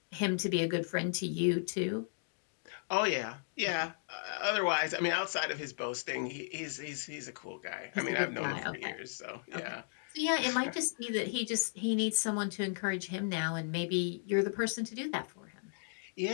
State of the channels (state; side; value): silent; right; digital silence